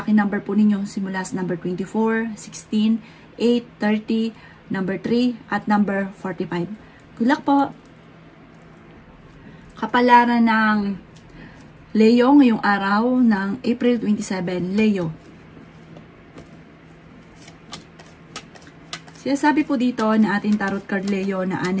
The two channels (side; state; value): both; identical; correlation 1.00